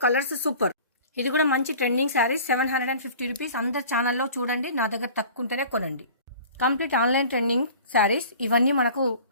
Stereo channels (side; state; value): both; inverted; correlation -0.44